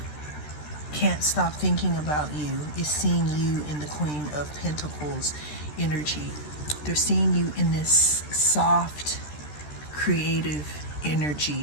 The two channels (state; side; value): late; right; 13 ms